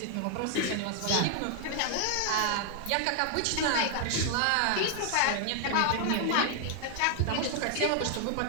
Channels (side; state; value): both; different; correlation 0.00